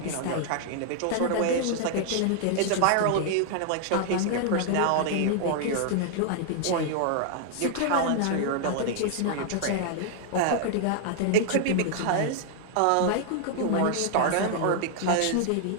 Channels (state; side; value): different; both; correlation 0.00